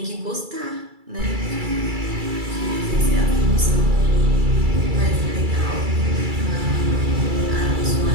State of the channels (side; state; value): left; late; 2.3 ms